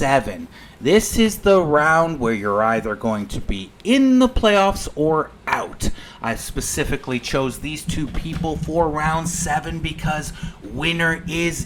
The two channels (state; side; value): identical; both; correlation 1.00